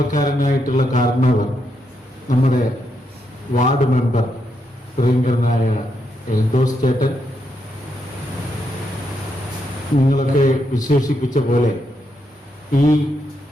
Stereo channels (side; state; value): both; normal; correlation 0.80